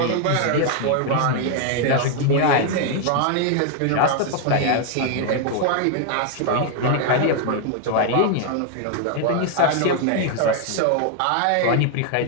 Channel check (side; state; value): both; different; correlation 0.00